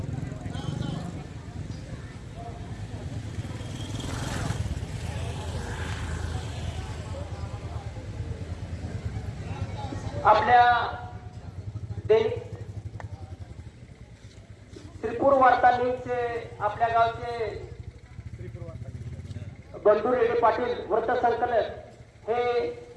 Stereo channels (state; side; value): identical; both; correlation 1.00